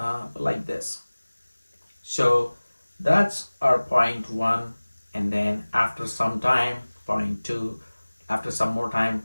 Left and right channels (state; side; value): inverted; both; correlation -1.00